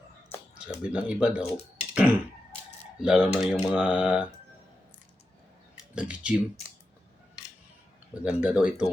Sabi ng iba daw, lalo na yung mga nag-gym, maganda daw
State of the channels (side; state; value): both; normal; correlation 0.89